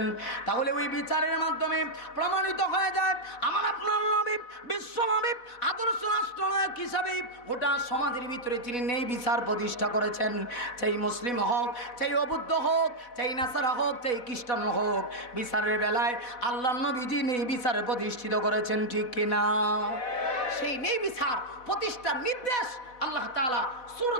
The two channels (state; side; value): late; right; 4.1 ms